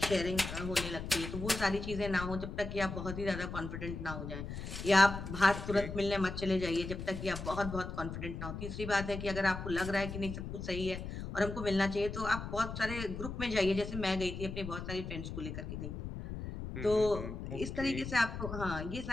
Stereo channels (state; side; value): noise; left; rumble, 7 dB below the sound